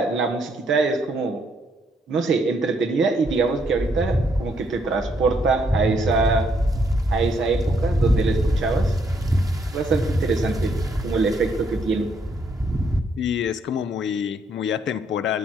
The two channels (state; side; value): normal; both; correlation 0.72